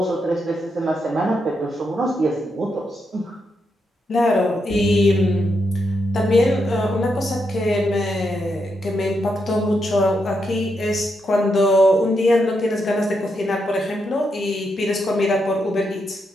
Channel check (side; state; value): both; normal; correlation 0.82